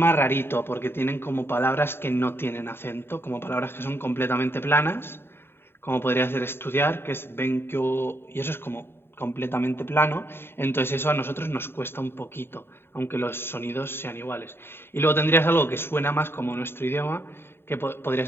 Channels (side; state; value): right; late; 0.11 ms